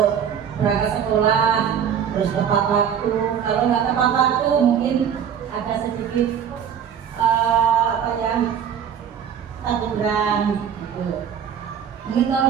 berangkat sekolah, terus tepat waktu. Kalau nggak tepat waktu, mungkin ada sedikit teguran gitu. Mungkin kalau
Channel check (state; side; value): quieter; left; 8.3 dB